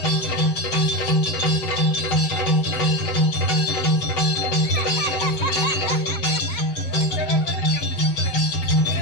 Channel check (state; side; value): late; right; 7.7 ms